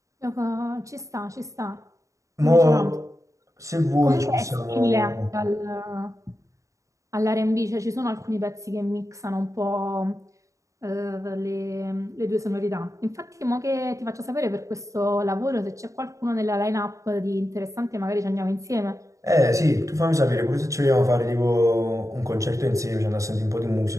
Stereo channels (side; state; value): left; late; 0.15 ms